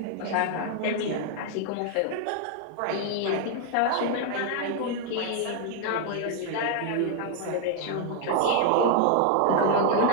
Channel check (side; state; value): both; different; correlation 0.00